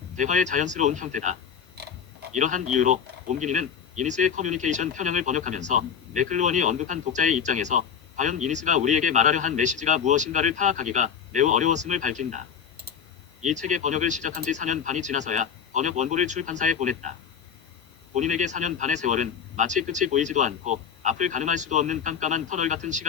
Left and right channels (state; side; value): quieter; right; 7.4 dB